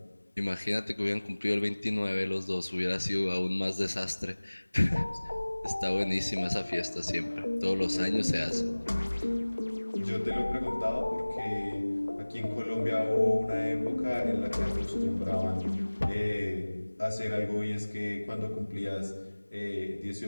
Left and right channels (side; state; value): both; inverted; correlation -1.00